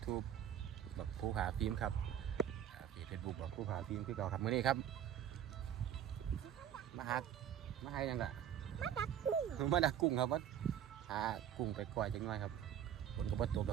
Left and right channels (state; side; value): quieter; left; 9.8 dB